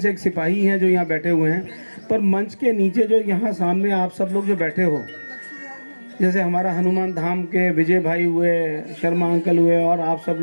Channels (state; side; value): inverted; both; correlation -1.00